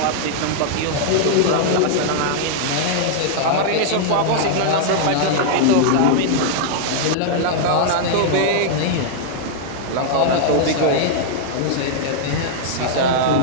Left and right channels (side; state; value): both; different; correlation -0.01